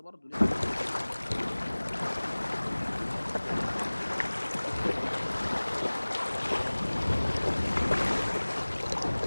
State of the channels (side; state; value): both; inverted; correlation -1.00